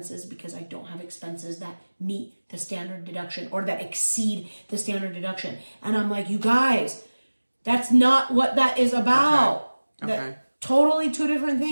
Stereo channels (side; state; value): both; inverted; correlation -1.00